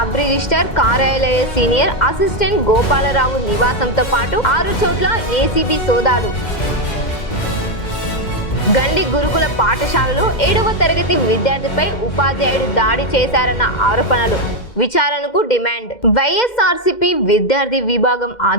రిజిస్టర్ కార్యాలయ సీనియర్ అసిస్టెంట్ గోపాలరావు నివాసంతో పాటు 6 చోట్ల ఏసీబీ సోదాలు. గండి గురుకుల పాఠశాలలో 7వ తరగతి విద్యార్థిపై ఉపాధ్యాయుడు దాడి చేశారన్న ఆరోపణలు. విచారణకు డిమాండ్. వైఎస్ఆర్సీపీ విద్యార్థి విభాగం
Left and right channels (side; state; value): right; late; 2.1 ms